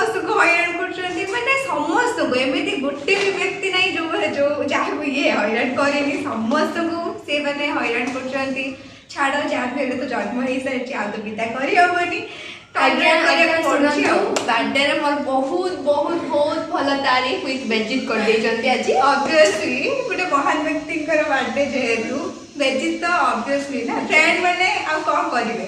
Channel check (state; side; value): identical; both; correlation 1.00